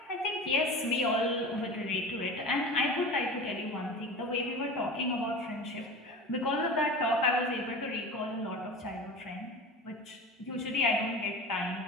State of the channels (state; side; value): normal; both; correlation 0.33